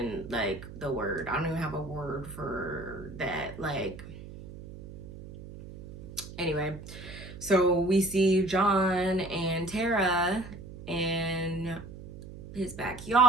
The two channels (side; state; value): right; noise; hum, 14 dB below the sound